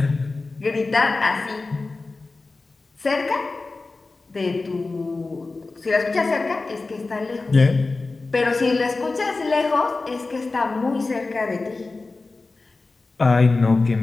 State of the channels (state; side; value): quieter; right; 3.6 dB